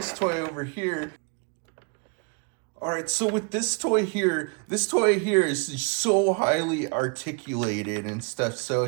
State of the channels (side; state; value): left; quieter; 34.8 dB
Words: toy over here. All right, so with this toy here is so highly articulated and stuff.